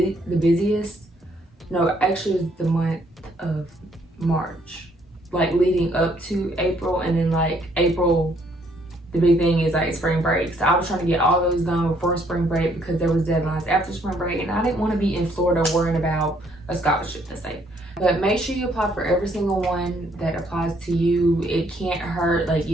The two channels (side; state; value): both; normal; correlation 0.67